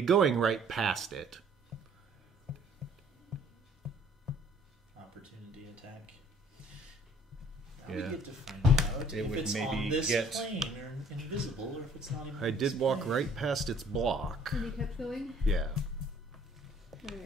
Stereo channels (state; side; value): normal; both; correlation 0.58